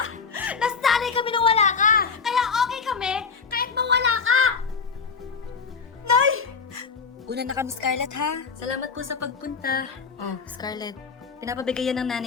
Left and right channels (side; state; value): right; quieter; 5.4 dB